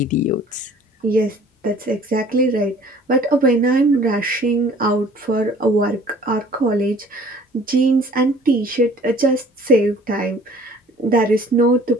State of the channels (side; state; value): both; normal; correlation 0.52